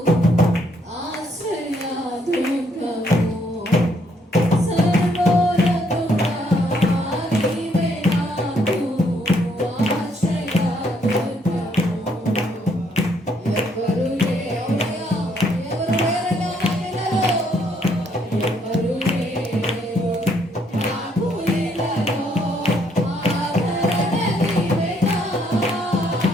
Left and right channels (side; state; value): both; normal; correlation 0.70